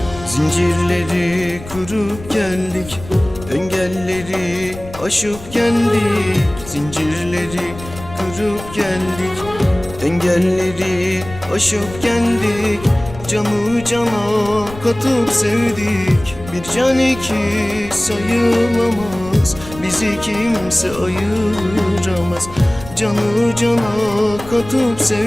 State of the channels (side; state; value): left; noise; rumble, 15 dB below the sound